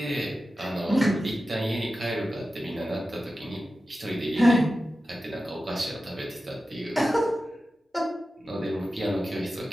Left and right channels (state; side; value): normal; both; correlation 0.93